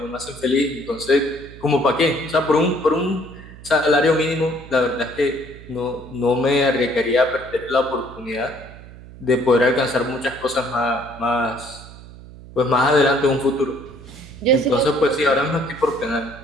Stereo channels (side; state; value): right; noise; hum, 18 dB below the sound